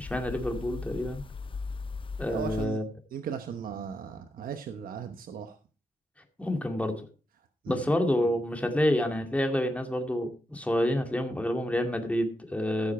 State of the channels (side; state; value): both; normal; correlation 0.84